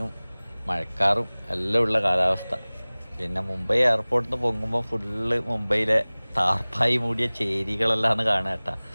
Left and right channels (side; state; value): both; inverted; correlation -1.00